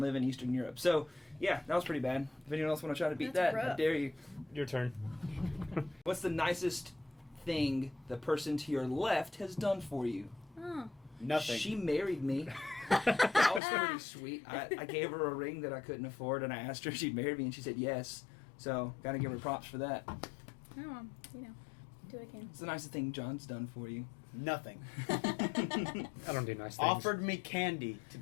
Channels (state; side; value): drops out; right; at 13.6 s